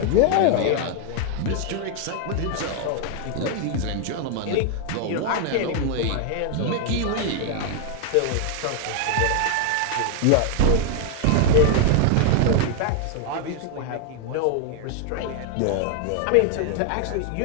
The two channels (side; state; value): both; different; correlation 0.00